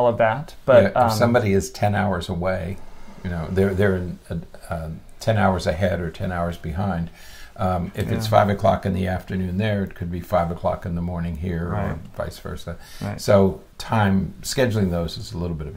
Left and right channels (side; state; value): both; identical; correlation 1.00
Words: of that. But if somebody is 10 hours away, they're in 10 hours ahead or 10 hours behind. If it's 5 o'clock in the afternoon there, it could be 5 o'clock in the morning here, or vice versa. So scheduling those is a little bit of